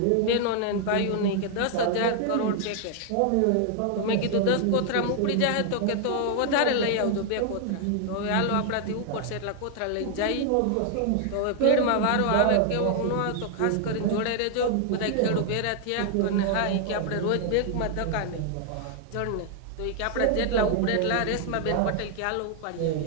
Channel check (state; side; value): different; both; correlation 0.00